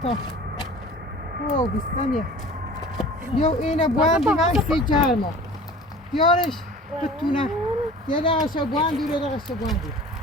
او بیستانیه یو اینو بوان دیگه سی جرمو بیارش بتونه یه دقیقه بوان دور یه دقیقه بوان دور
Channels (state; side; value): normal; both; correlation 0.42